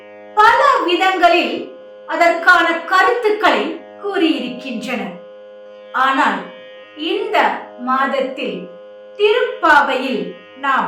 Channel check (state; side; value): identical; both; correlation 1.00